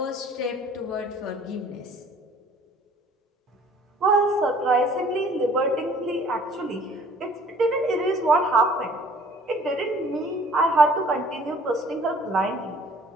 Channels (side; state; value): both; normal; correlation 0.54